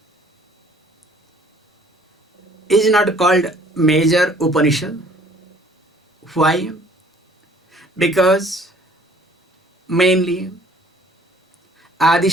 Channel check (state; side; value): normal; both; correlation 0.56